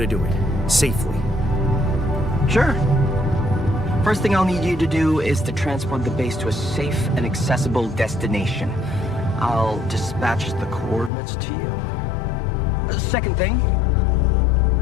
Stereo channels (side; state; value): right; drops out; at 11.1 s